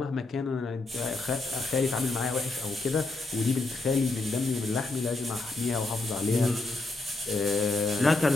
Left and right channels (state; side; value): quieter; right; 3.3 dB